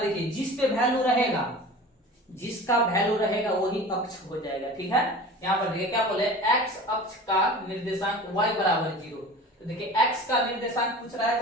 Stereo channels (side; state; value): both; normal; correlation 0.38